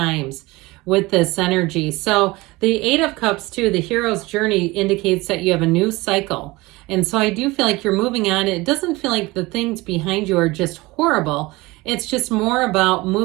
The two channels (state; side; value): quieter; left; 21.7 dB